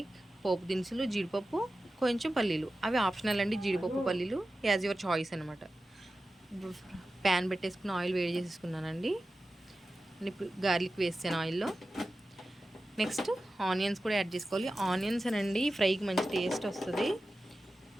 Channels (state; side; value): normal; both; correlation 0.94